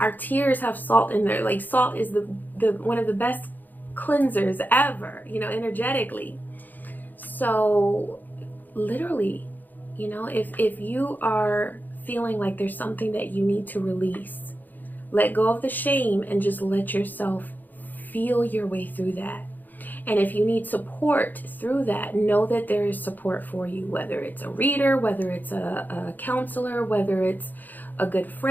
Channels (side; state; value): right; late; 0.086 ms